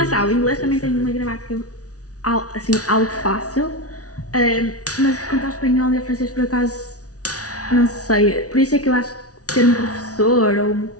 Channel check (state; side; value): late; right; 0.68 ms